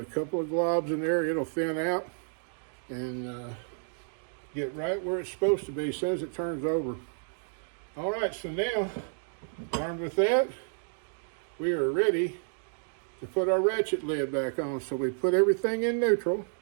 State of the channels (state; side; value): silent; left; digital silence